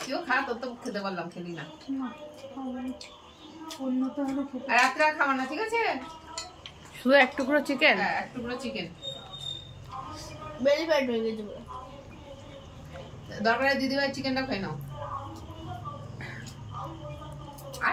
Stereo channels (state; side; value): identical; both; correlation 1.00